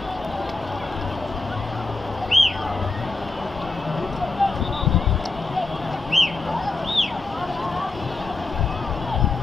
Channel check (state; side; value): quieter; right; 3.4 dB